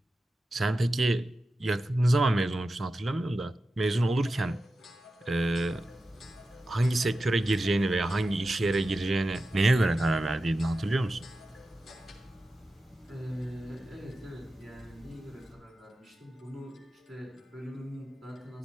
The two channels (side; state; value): both; normal; correlation 0.92